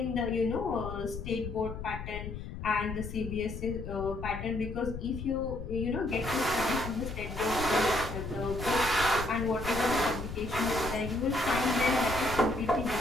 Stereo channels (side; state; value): left; noise; rumble, 8 dB below the sound